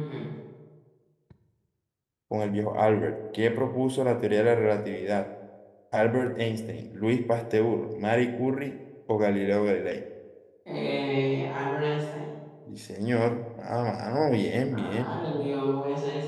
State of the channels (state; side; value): identical; both; correlation 1.00